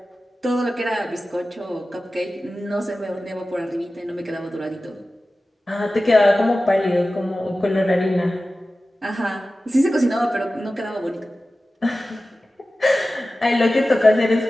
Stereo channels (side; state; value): both; normal; correlation 0.95